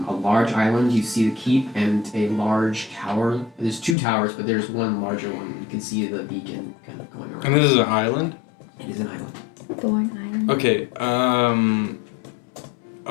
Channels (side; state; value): right; drops out; at 4.0 s